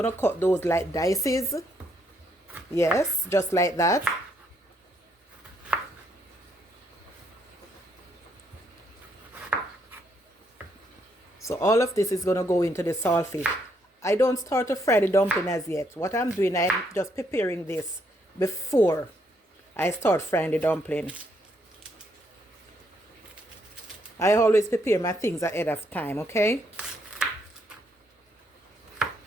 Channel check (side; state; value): both; normal; correlation 0.73